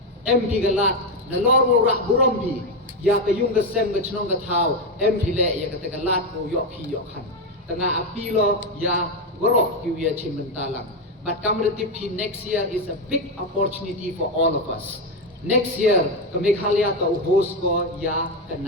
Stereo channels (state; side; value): normal; both; correlation 0.09